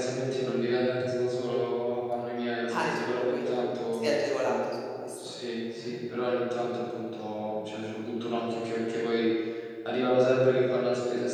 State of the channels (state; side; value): identical; both; correlation 1.00